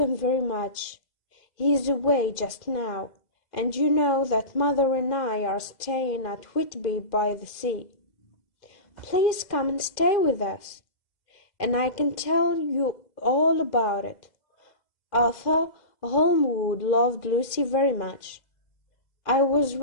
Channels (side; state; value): right; late; 2.0 ms